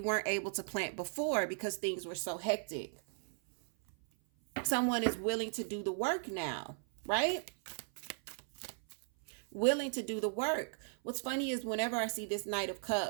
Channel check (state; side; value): silent; left; 53 dB below the other